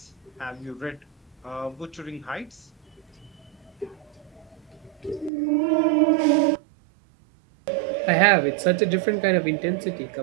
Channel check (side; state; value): left; drops out; at 5.3 s